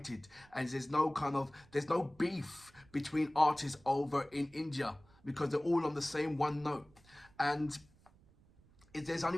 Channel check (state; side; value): noise; right; rumble, 28 dB below the sound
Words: and there's no beef between artists over in India, because they're all on the same one note. And there's